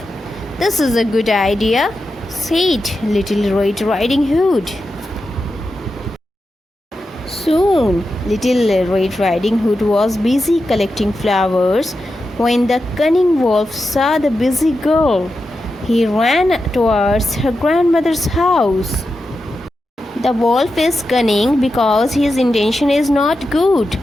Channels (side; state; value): both; normal; correlation 0.89